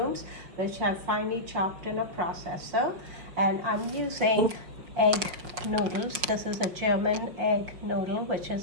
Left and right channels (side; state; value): left; late; 5.3 ms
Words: which I've finely chopped in a processor. And I'm using egg noodles. This is a German egg noodle, which